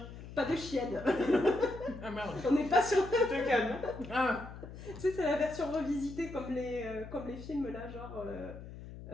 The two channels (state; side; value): noise; left; hum, 13 dB below the sound